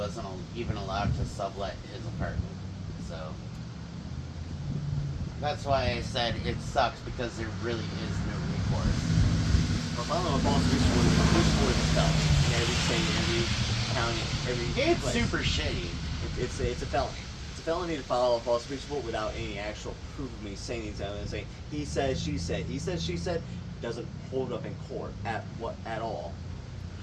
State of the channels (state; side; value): identical; both; correlation 1.00